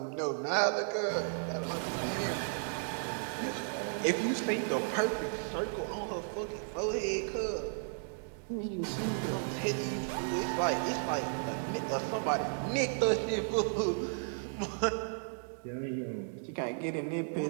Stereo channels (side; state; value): left; silent; digital silence